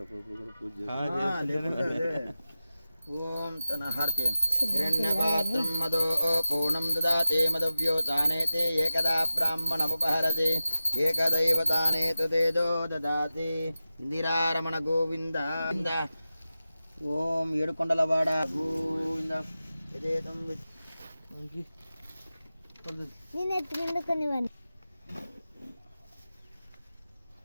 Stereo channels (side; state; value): both; inverted; correlation -0.93